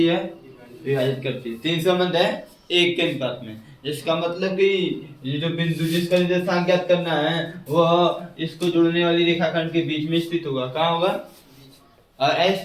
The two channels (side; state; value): both; identical; correlation 1.00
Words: है, विभाजित करती है। तीन संबंध है एक के अनुपात में। इसका मतलब कि ये जो बिंदु जिसका निर्देशांक ज्ञात करना है वह इसको जोड़ने वाली रेखाखंड के बीच में स्थित होगा। कहाँ होगा? और